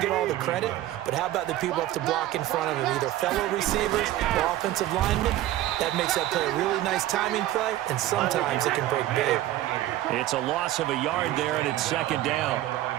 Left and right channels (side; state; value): left; quieter; 14.4 dB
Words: get all the credit. But how about the people up to block in front of him, either fellow receivers or offensive linemen? That makes that play a really nice timing play, and sometimes it can break big. It's a loss of a yard there, and it's 2nd down.